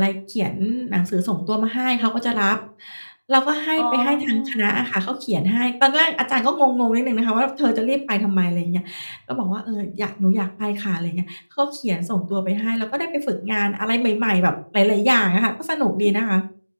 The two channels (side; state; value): both; inverted; correlation -1.00